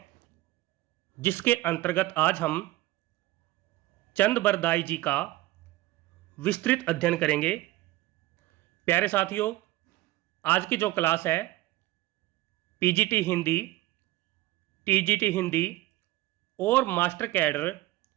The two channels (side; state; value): left; quieter; 17.5 dB